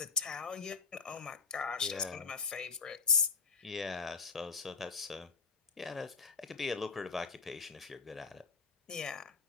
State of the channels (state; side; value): quieter; right; 4.9 dB